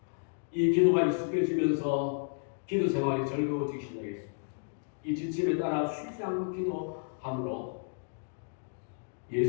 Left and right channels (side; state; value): right; silent; digital silence